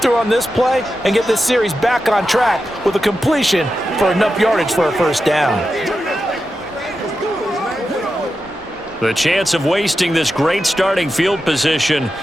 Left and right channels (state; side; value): normal; both; correlation 0.90